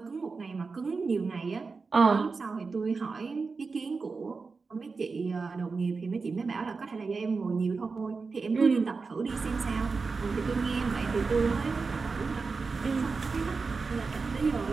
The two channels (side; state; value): left; quieter; 4.5 dB